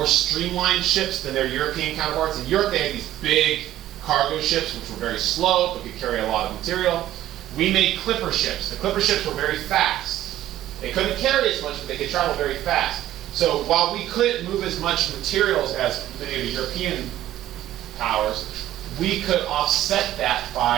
streamlined ships than their European counterparts. In Europe, they had these big cargo ships, which were very slow, but could carry a lot of material. We made clipper ships. The clipper ships were very fast. They couldn't carry as much, but they could travel very fast. So while we couldn't move as much materials as many of the European powers, we could offset that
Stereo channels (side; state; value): left; quieter; 13.4 dB